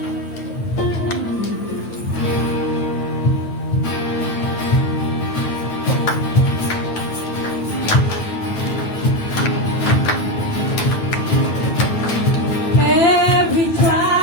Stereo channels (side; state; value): right; late; 9.0 ms